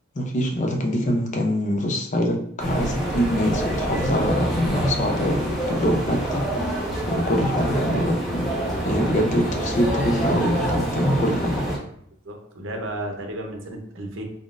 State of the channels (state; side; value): normal; both; correlation 0.62